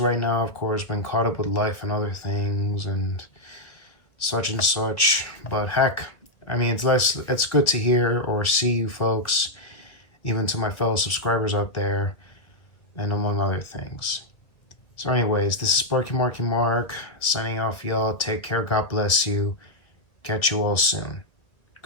now, of course, been caught up with life and other things and such and such. But heck, I mean, it's good to hear or see you folks, even to my fellow subscribers out there, and among other things. So anyways, this is Sparky Marky Mark, signing off, y'all. Take care, God bless you. Catch you all soon.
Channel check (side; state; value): right; late; 1.6 ms